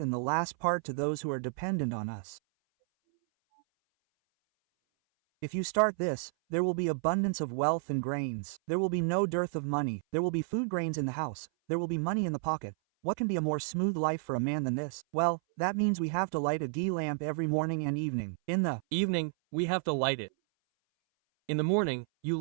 the last part to those who are dependent on us. If you start this, there will be abundance of wealth and grains. There will be no dearth of money. There will be food, grains in the house. There will be money in the pocket. What can be a more smooth life for a man than this? Well, that means we have to light a ghee lamp every morning and evening. In the evening, we have to light it. In the morning, you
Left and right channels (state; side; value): silent; left; 57 dB below the other